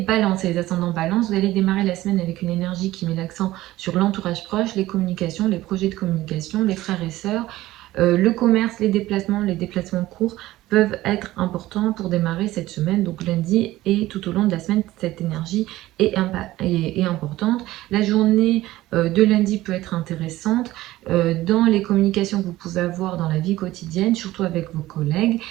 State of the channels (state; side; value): quieter; left; 16.4 dB